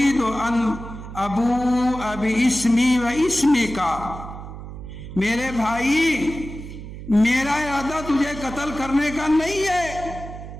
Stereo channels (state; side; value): noise; right; hum, 11 dB below the sound